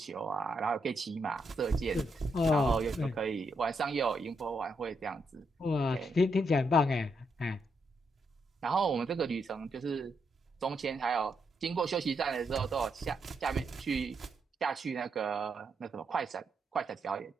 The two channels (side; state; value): both; normal; correlation 0.79